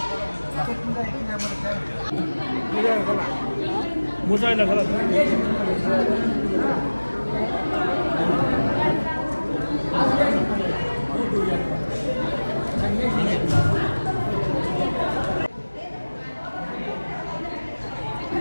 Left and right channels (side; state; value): both; inverted; correlation -1.00